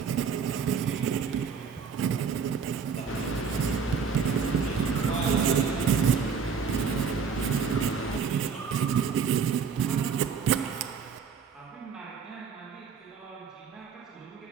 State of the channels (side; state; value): left; quieter; 6.1 dB